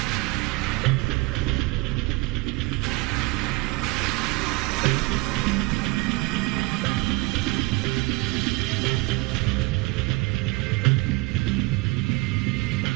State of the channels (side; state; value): left; quieter; 23.9 dB